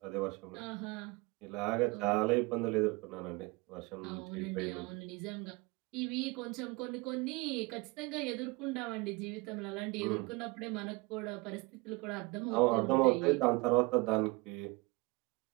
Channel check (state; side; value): quieter; left; 24.8 dB